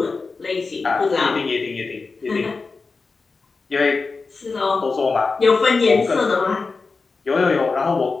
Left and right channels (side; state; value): right; quieter; 4.2 dB